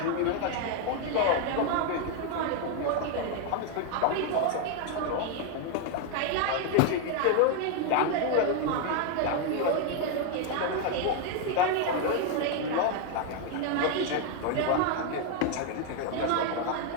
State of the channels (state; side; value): different; both; correlation 0.01